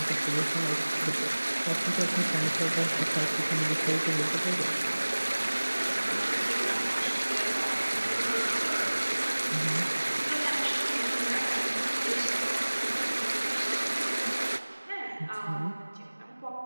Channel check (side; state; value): both; inverted; correlation -1.00